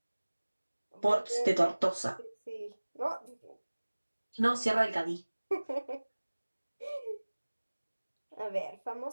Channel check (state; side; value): inverted; both; correlation -1.00